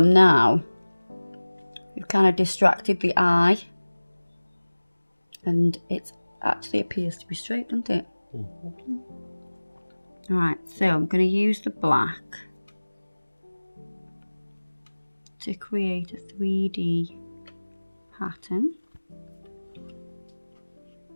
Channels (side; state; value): both; inverted; correlation -1.00